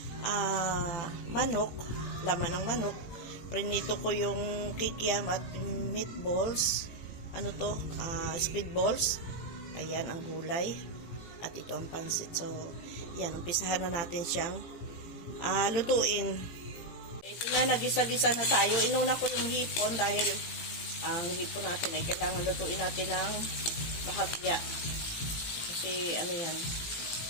manok, laman ng manok. Prinito ko yung kikiam at meatballs. Ano to? Squid balls. Ayan ang gulay. At ito ang pansit. So, yan. Umpisahan na natin siyang lutuin. Ito na, nagisa-gisa na tayo. Inuna ko yung hipon dahil ang hipon natin ay kailangan lutuin natin ng bahagya. Kasi ano yan.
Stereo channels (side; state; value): right; late; 18 ms